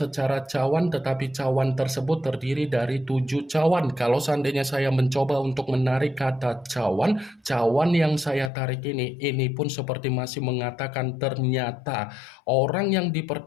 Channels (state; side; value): drops out; right; at 8.5 s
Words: cawan, tetapi cawan tersebut terdiri dari 7 cawan. Kalau seandainya saya mencoba untuk menarik kata cawan yang saya tarik ini pun seperti masih mengatakan ternyata orang yang